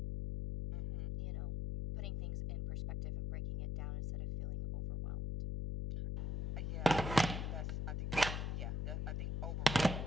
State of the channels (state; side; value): noise; left; hum, 2 dB below the sound